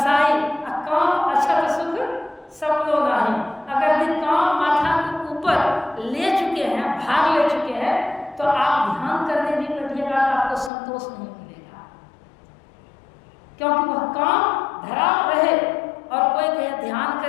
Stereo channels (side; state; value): right; drops out; at 10.7 s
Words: काम अछत सुख सपनो नहीं। अगर ये काम माथा के ऊपर ले चुके हैं, भाग ले चुके हैं, तो आप ध्यान करने भी बैठिएगा तो आपको संतोष नहीं मिलेगा, क्योंकि वह काम धरा रहे। और कोई कहे ध्यान